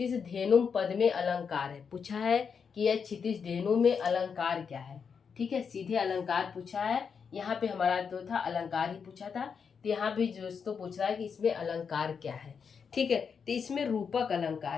धेनु पद में अलंकार है, पूछा है कि यह क्षितिज धेनु में अलंकार क्या है। ठीक है, सीधे अलंकार पूछा है, यहाँ पे हमारा तो था अलंकार ही पूछा था, तो यहाँ भी दोस्तों पूछ रहा है कि इसमें अलंकार क्या है। ठीक है, तो इसमें रूपक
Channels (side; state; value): right; quieter; 6.3 dB